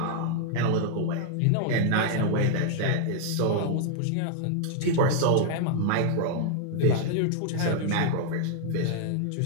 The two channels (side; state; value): both; different; correlation -0.01